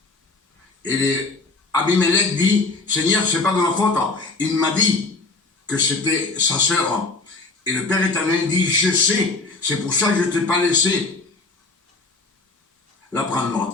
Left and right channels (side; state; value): right; quieter; 3.6 dB